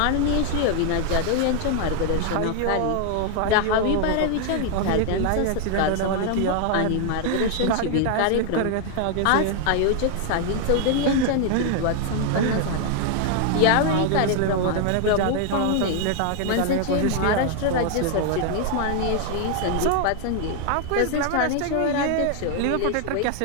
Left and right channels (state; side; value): different; both; correlation 0.00